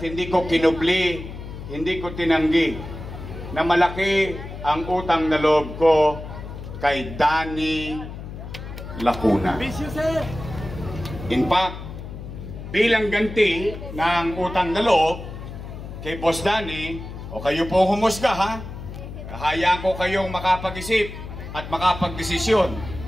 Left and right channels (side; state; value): left; noise; hum, 10 dB below the sound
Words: hindi ko kinubli, hindi ko tinanggi na malaki ang utang na loob ko kay Danny Lacuna. In fact, bilang ganti ng utang na loob kay Boss Danny, o kayo po humusga ha, kahayaan ko kayong makapag-isip at makapag-desisyon.